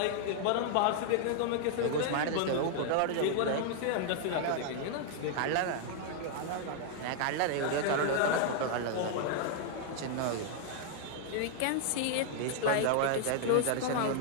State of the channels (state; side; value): different; both; correlation -0.01